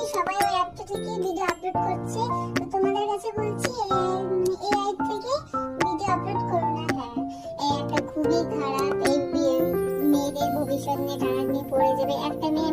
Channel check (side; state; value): both; identical; correlation 1.00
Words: সবাই ওই অ্যাপটা থেকে ভিডিও আপলোড করছে। তো তোমাদের কাছে বলছি, এআই থেকে ভিডিও আপলোড করো না। হ্যাঁ, এই অ্যাপটা খুবই খারাপ। এই মেয়েদের ভবিষ্যৎ নিয়ে টানাটানি পড়ে যাবে। একটা মেয়ে